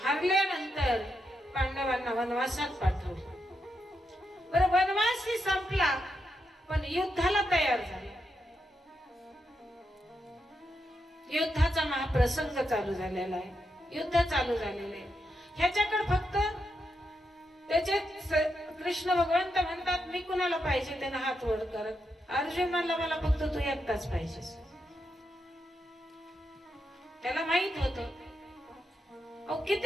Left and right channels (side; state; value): both; normal; correlation 0.84